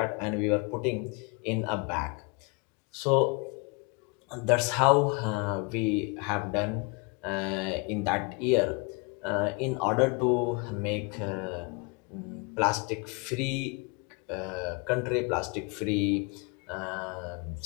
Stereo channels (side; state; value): right; quieter; 31.2 dB